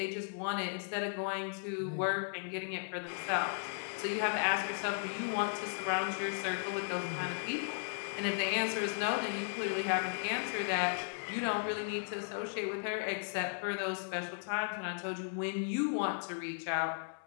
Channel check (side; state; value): right; silent; 54 dB below the other